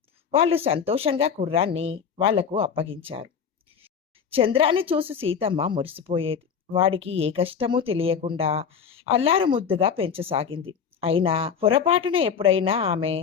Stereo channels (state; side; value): quieter; right; 6.9 dB